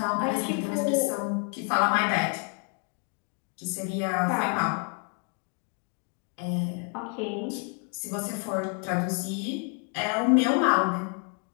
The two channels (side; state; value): right; quieter; 39.8 dB